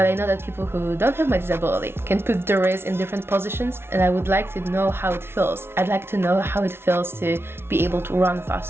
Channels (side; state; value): left; late; 0.12 ms